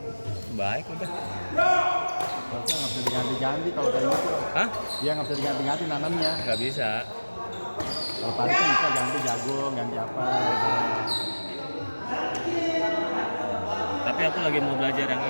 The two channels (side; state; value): both; inverted; correlation -1.00